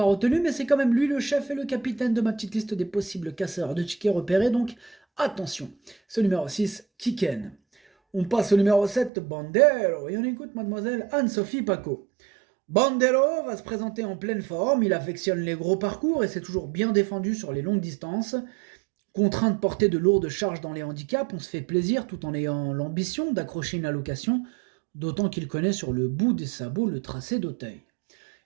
retenu, mais c'est quand même lui le chef et le capitaine de ma petite liste des possibles casseurs de tickets repérés, donc attention. Ce numéro 6, Kiken. On passe au numéro 7, Bandero, et on écoute mademoiselle Anne-Sophie Paco. Bandero va se présenter en pleine forme, il affectionne les gros parcours et s'est toujours bien défendu sur les longues distances. Contraint de porter de lourdes charges dans les handicaps, on se fait plaisir tout en ayant l'ambition d'accrocher une allocation, d'autant qu'il connaît sur le bout des sabots le tracé d'Auteuil.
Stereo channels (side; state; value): left; drops out; at 9.1 s